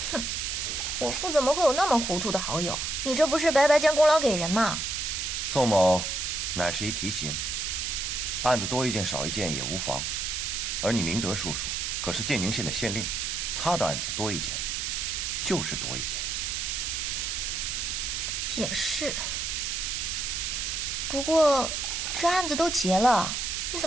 哼，我父怎么会有那么糊涂的好友？你这不是白白将功劳给人吗？宋某乃是一提刑，案子多一件少一件也无妨。而你明德叔叔可是建宁县的县令，他的案子多一件，就是多一件。也是。不过这案子都结了，你怎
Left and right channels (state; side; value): noise; right; hiss, 2 dB below the sound